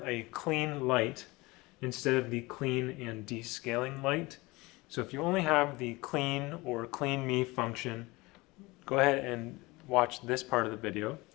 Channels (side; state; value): right; quieter; 22.6 dB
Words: a clean light instead of the clean and descaling light. So if you only have the clean or clean me function, go ahead and watch this part of the video.